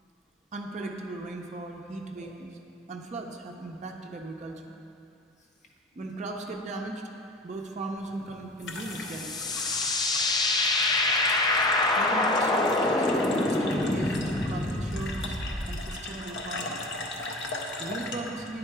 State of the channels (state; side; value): normal; both; correlation 0.36